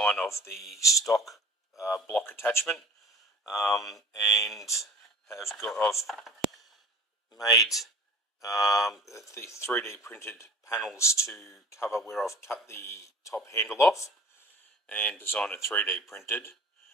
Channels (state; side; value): normal; both; correlation 0.43